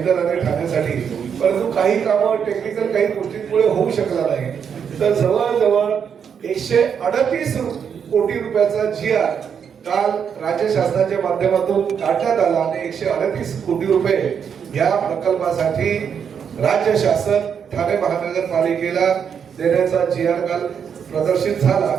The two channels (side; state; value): left; quieter; 7.4 dB